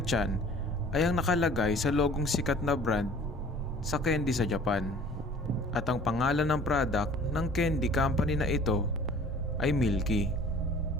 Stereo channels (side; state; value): both; normal; correlation 0.49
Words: ay ang nakalagay sa logong sikat na brand sa candy sa Japan. At ang pangalan ng product ng candy company na ito ay Milky.